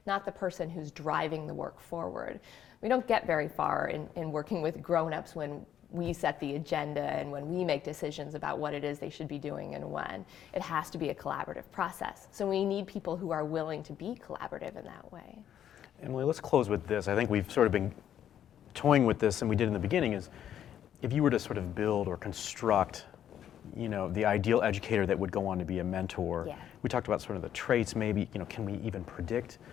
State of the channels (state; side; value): quieter; right; 10.2 dB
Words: not the person who's driving the work forward. We don't get very far in working with grown-ups when we set the agenda and when we make decisions about what it is they should be doing and when. It has to be a collaborative process. So we need people who are willing to be collaborative in that way. Emily, let's close with this. I think we've sort of been toying with this, and we did in the beginning, is if you were to sort of build or construct, you know, the ideal educator that would go on to be a mentor. Yeah. We talked about sort of the traits, maybe, you know, can we even predict